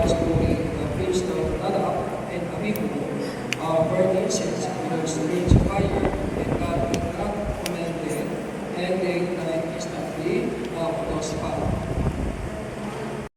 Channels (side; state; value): both; identical; correlation 1.00